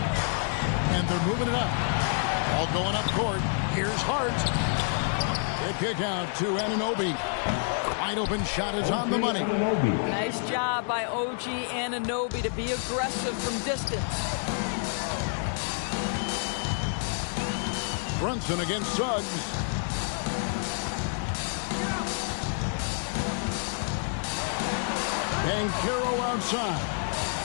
And they're moving it up. All going up court. Here's Hart. The kick out to Anunoby. Wide open shot is on the money. Nice job by OG Anunoby to be aggressive from distance. Brunson against Suggs. Banchero outside.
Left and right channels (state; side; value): silent; right; 59 dB below the other